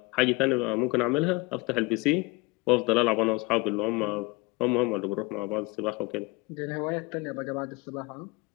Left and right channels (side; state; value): right; quieter; 24.0 dB